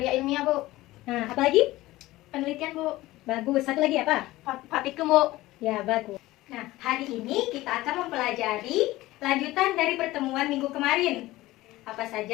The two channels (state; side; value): quieter; right; 17.7 dB